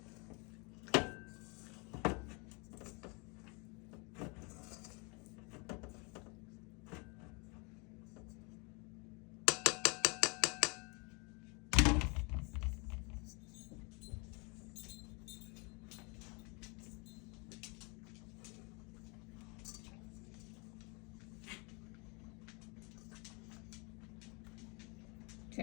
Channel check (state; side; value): quieter; right; 31.2 dB